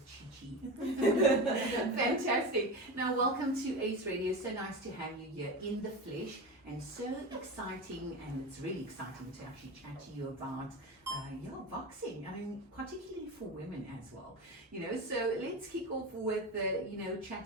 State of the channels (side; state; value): both; normal; correlation 0.24